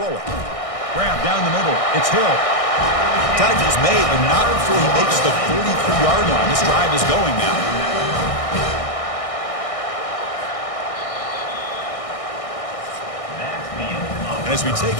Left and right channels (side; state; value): right; late; 1.6 ms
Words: it. Grab down the middle. It's Hill. Tackle is made, but not before he makes the 43-yard line. This drive is going now. And as we